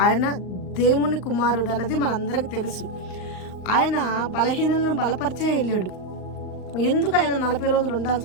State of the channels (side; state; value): right; late; 39 ms